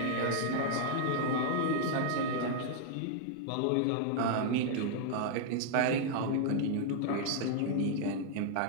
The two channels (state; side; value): different; both; correlation 0.00